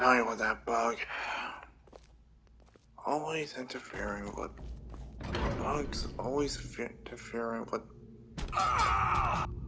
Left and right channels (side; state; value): both; identical; correlation 1.00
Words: you with that bug? Always interfering with... Bugs always interfering with